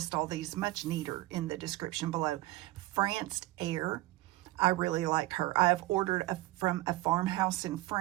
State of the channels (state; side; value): quieter; left; 18.1 dB